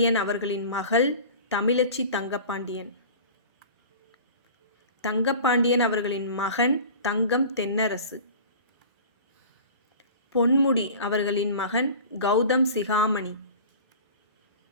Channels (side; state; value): both; inverted; correlation -0.39